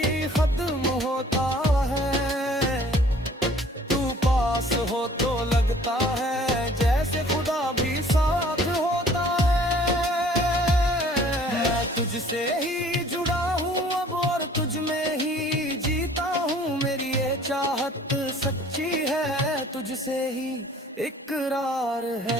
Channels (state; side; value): normal; both; correlation 0.54